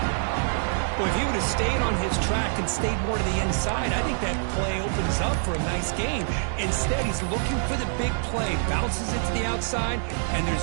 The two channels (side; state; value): left; silent; digital silence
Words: Well, if he would have stayed on his track and stayed more to the inside, I think that play opens up for a nice game. Instead, he's looking for the big play, bounces it to the outside, and there's